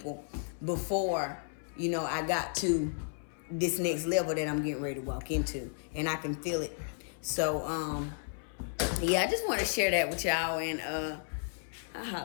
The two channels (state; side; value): silent; right; 56 dB below the other